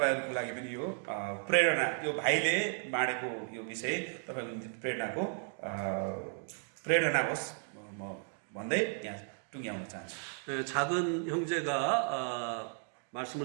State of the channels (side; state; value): left; silent; 55 dB below the other